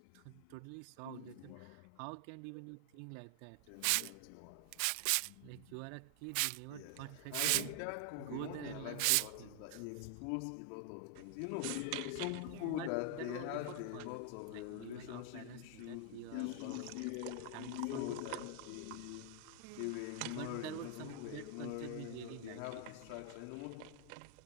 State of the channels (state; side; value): different; both; correlation 0.00